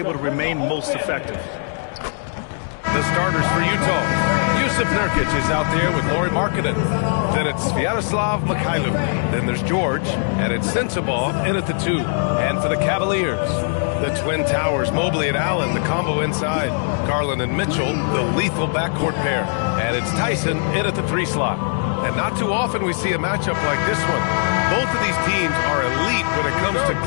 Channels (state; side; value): silent; right; 65 dB below the other